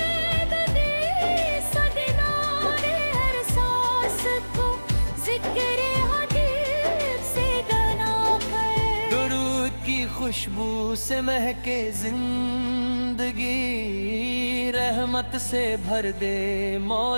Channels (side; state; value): both; inverted; correlation -1.00